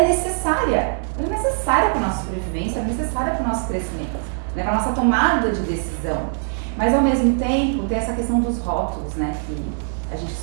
necessária. Ela é necessária para a nossa sobrevivência, é necessária para o nosso crescimento, né? Para a nossa tomada de decisão. Mas ao mesmo tempo tem essa questão dos rótulos, né? Que a gente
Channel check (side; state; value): left; silent; digital silence